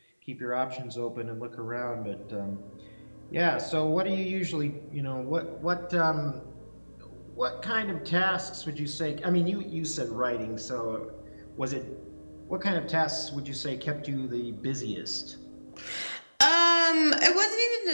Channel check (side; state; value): both; inverted; correlation -1.00